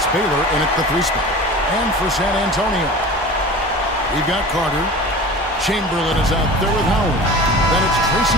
Baylor in at the 3 spot. And for San Antonio, we've got Carter. Chamberlain is out there with Howard. Then it's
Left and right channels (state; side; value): normal; both; correlation 0.37